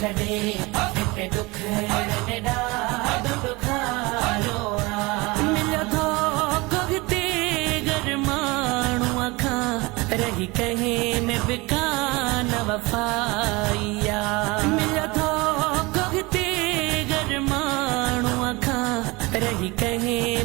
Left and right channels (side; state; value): left; quieter; 24.1 dB